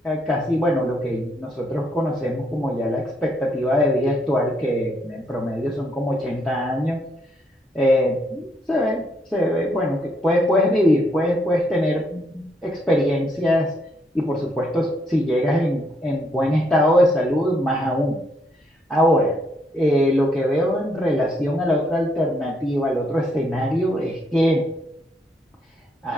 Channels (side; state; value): both; normal; correlation 0.73